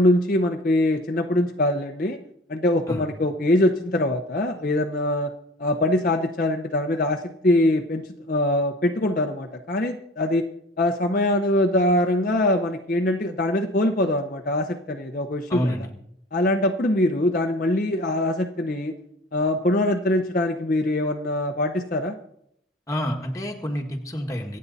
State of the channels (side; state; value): both; normal; correlation 0.42